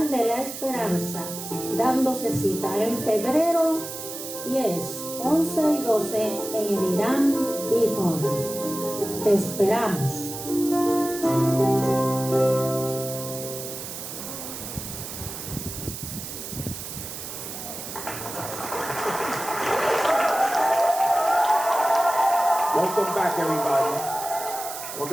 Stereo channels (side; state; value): right; noise; hiss, 9 dB below the sound